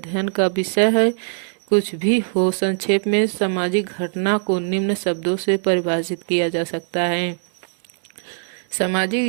का विषय है। कुछ भी हो, संक्षेप में सामाजिक घटना को निम्न शब्दों से परिभाषित किया जा सकता है।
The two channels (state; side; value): silent; left; 64 dB below the other